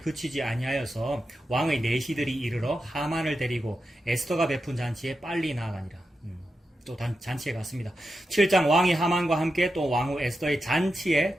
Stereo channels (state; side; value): normal; both; correlation 0.89